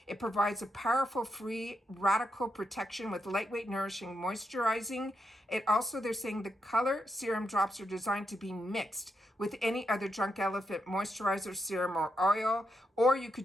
It provides a powerful, free, radical protection with lightweight, nourishing, moisturizing. It also, they're saying the color serum drops are designed to be mixed with any other Drunk Elephant moisturizer, serum, or oil, or you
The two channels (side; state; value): both; normal; correlation 0.83